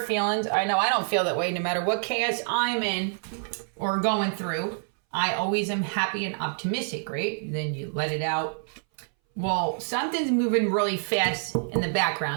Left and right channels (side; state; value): left; silent; 60 dB below the other